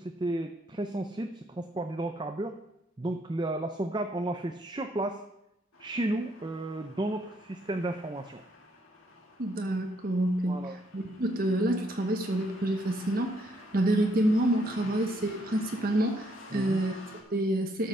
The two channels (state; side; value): normal; both; correlation 0.71